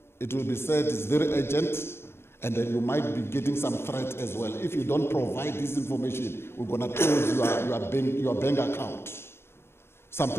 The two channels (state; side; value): late; right; 0.12 ms